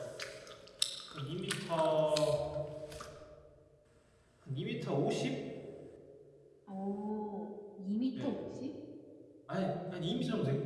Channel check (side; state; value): both; identical; correlation 1.00